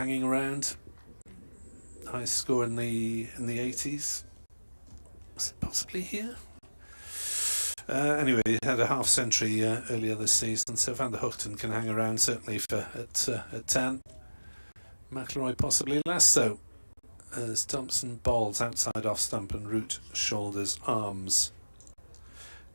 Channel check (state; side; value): inverted; both; correlation -1.00